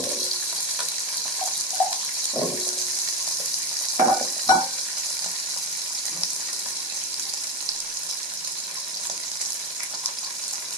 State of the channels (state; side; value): normal; both; correlation 0.14